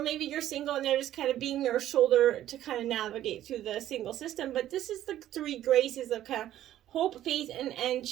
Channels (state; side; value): quieter; left; 12.6 dB